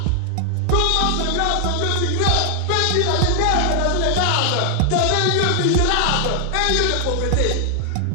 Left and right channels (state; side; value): different; both; correlation 0.00